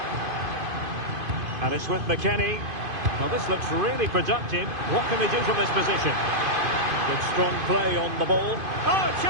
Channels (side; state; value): left; late; 2.5 ms